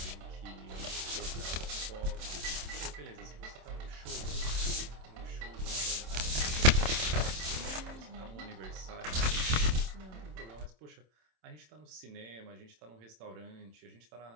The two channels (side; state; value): left; late; 27 ms